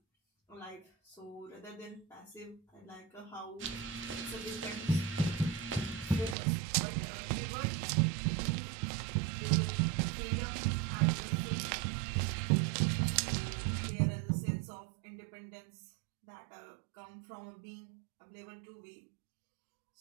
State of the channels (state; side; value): drops out; left; at 6.4 s